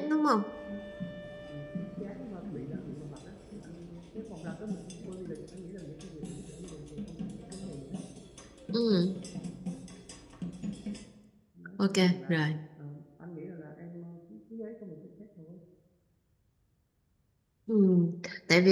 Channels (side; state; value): both; identical; correlation 1.00